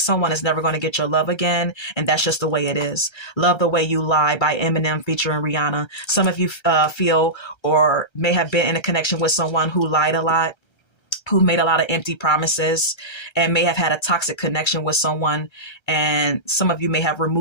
is never going to get your love again, and that's just the way it is. Love the Way You Lie by Eminem featuring Rihanna. Some of you feel or may have been in a connection with someone who lied a lot, who made a lot of empty promises, and may have had a toxic connection with someone. And some of you may have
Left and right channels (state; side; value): late; right; 1.3 ms